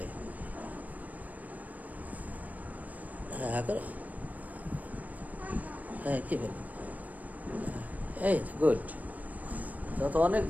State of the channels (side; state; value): left; late; 0.075 ms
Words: হ্যাঁ, হ্যাঁ করো। হ্যাঁ, কি বল? এই গুড। তো অনেক